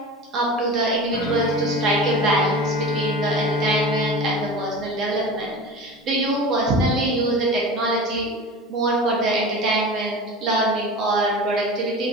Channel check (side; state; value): both; normal; correlation 0.33